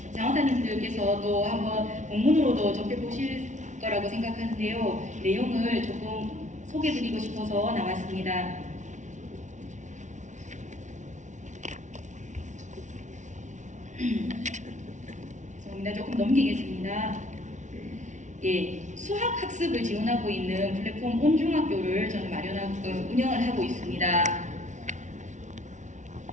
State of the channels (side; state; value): left; late; 0.36 ms